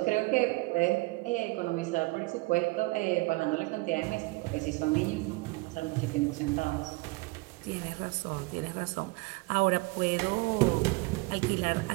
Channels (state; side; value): quieter; left; 24.5 dB